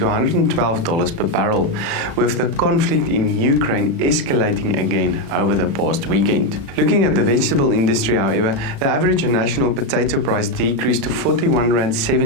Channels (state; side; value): late; left; 36 ms